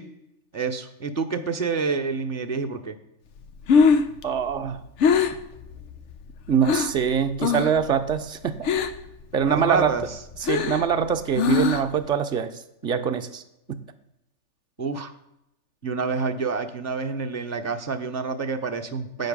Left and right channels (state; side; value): late; right; 3.4 ms